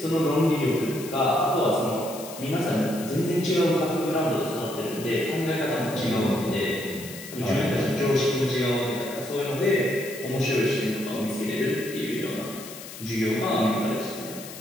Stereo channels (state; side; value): noise; left; hiss, 13 dB below the sound